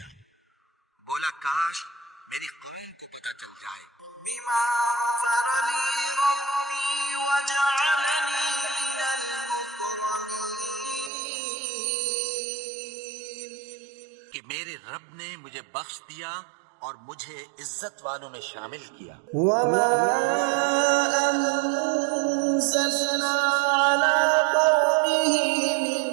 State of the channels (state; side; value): drops out; left; at 11.1 s